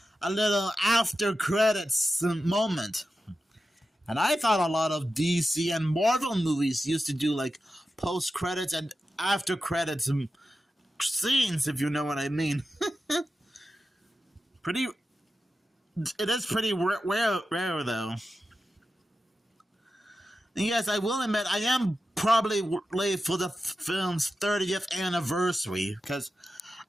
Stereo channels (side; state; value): both; normal; correlation 0.91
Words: a little after credits moment. And I thought a lot of DC and Marvel movies used to do like post credits and after credits scenes, if you know what I mean. It is pretty rare though. And yes, I will admit, I am probably late for the film's 30th anniversary, because